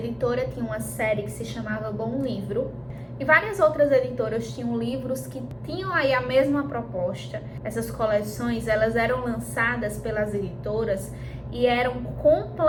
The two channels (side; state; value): both; identical; correlation 1.00